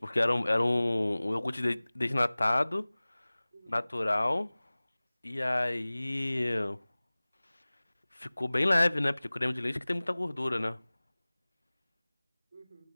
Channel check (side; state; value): both; inverted; correlation -1.00